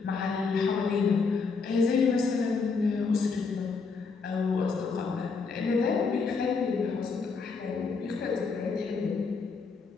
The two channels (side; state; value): right; quieter; 4.8 dB